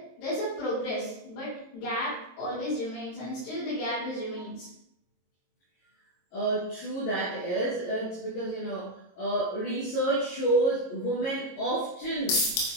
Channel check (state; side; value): late; right; 22 ms